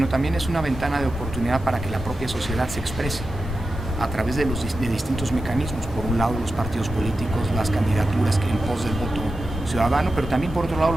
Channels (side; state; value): both; normal; correlation 0.91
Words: también es una ventana de oportunidad para que la propia sociedad se exprese a través de distintos mecanismos. Por un lado, los partidos políticos, las candidaturas en pos del voto ciudadano, pero también por otro lado